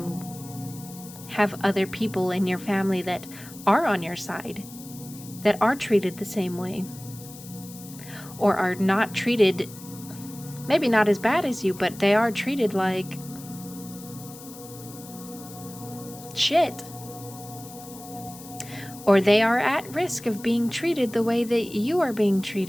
have other people in your family that are on your side, that are treated the same way, or are not treated, maybe not as bad as you, but they are treated like shit. Or they are at risk of being treated the way that you are being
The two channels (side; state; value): left; noise; hiss, 17 dB below the sound